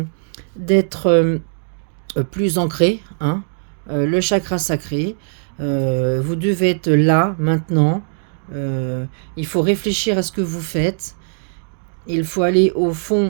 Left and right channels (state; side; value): silent; left; digital silence